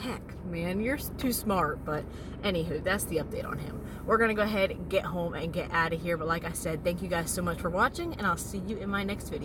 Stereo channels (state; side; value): identical; both; correlation 1.00